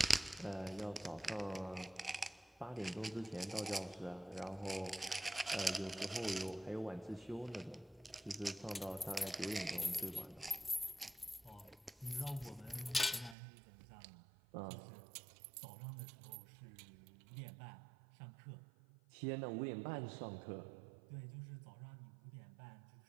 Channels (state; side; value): drops out; left; at 13.4 s